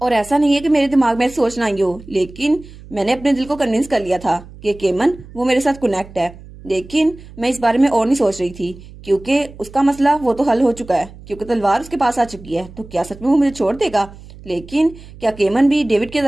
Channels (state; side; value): noise; right; hum, 19 dB below the sound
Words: और ऐसा नहीं है कि मेरे दिमाग में सोचना ही हो, लेकिन मैंने अपने दिल को कन्विंस कर लिया था कि केमन वो मेरे साथ कनेक्ट है। लेकिन मैं इस बारे में और नहीं सोच रही थी, क्योंकि उसका मसला वो तो हल हो चुका है, क्योंकि तलवार उसके पास आ चुकी है। तो क्या सच में वो मुझे छोड़ देगा। लेकिन क्या केमन भी डेविड की